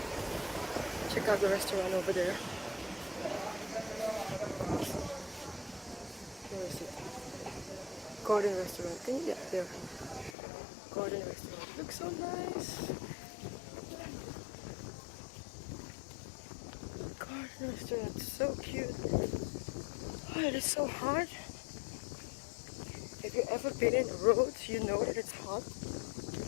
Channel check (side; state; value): right; drops out; at 10.4 s